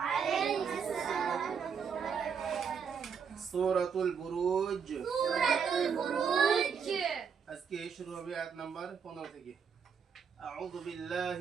السلام ورحمة الله وبركاته. سورة البروج. سورة البروج. আজকে শুরু হবে আয়াত নাম্বার 15 থেকে। أعوذ بالله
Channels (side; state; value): left; quieter; 6.6 dB